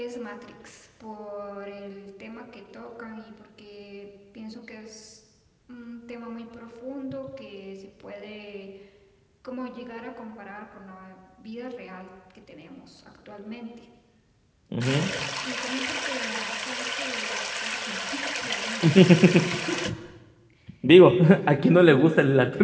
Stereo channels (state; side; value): identical; both; correlation 1.00